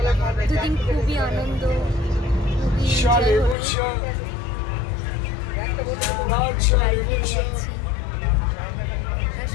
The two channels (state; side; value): drops out; right; at 3.6 s